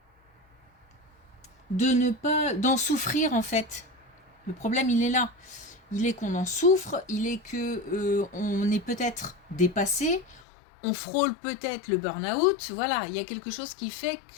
d'en souffrir en fait. Le problème il est là. Il est qu'on en souffre, il est que on est peut-être dépassé, on frôle peut-être le burn-out. Voilà, il y a quelque chose qui fait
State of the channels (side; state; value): right; drops out; at 10.4 s